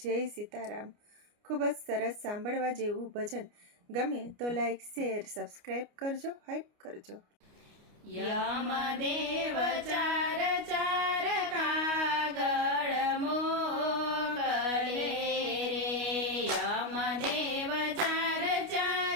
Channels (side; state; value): left; late; 29 ms